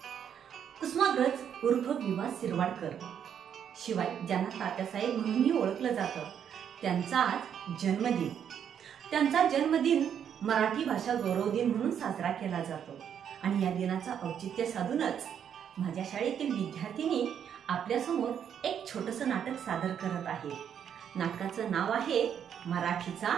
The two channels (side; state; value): left; quieter; 8.6 dB